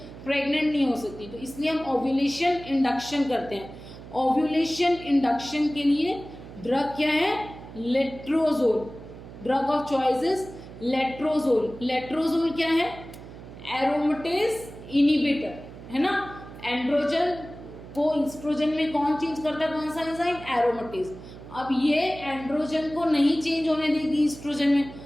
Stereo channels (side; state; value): right; noise; hum, 15 dB below the sound